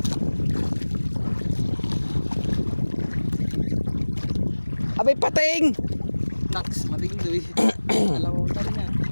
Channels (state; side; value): inverted; both; correlation -1.00